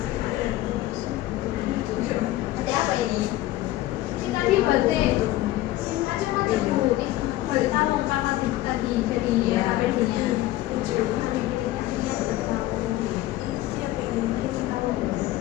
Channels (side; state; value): right; quieter; 16.0 dB